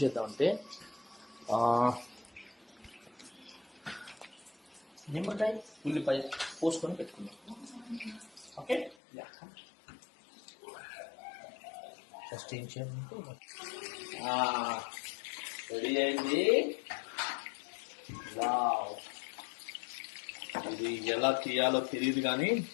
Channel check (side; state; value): right; drops out; at 9.0 s